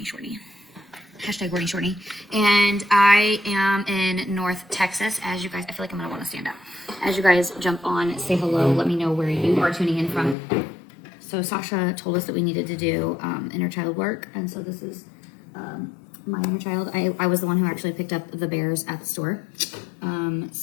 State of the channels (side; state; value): right; drops out; at 10.4 s